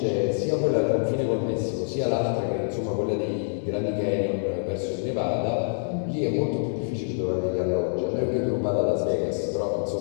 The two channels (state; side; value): silent; right; digital silence